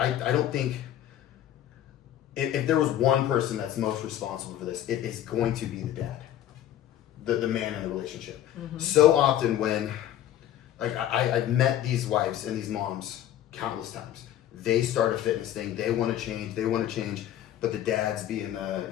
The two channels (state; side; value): quieter; right; 11.7 dB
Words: think, if there was one person that's most responsible for this, it is going to be the dad, the man in the relationship. So often when, like, I've met these wives and these moms countless times. They start a fitness thing. They want to change, but the dad's being